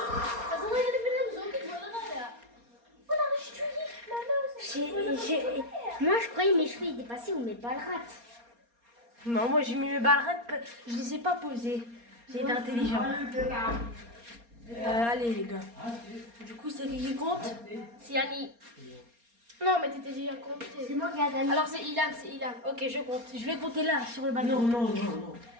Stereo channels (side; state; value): left; late; 4.3 ms